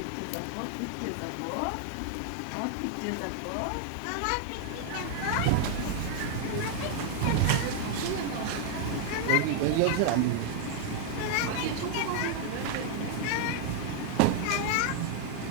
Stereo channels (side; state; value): both; different; correlation 0.00